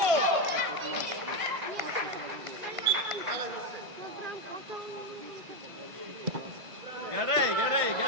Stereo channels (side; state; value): left; late; 1.6 ms